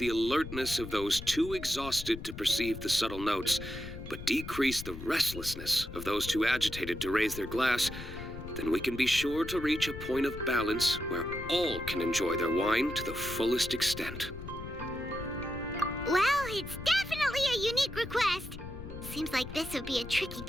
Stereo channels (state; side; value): noise; left; rumble, 11 dB below the sound